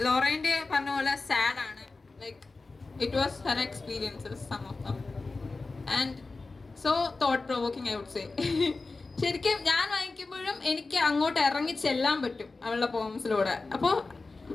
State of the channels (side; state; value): right; quieter; 3.7 dB